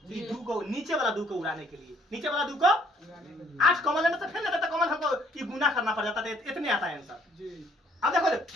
ये 2 को नीचे वाला 2 को उड़ाने के लिए, नीचे वाला 2 को 8 कॉमन लेना तो फिर ना तो कॉमन हमको ये गुना करना पड़ जाता है, इतने आता है आंसर जी। अब देखो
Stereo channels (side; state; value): both; normal; correlation 0.64